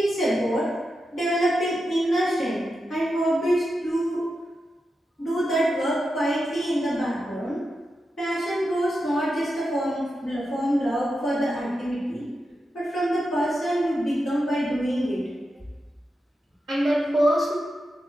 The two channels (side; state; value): both; normal; correlation 0.89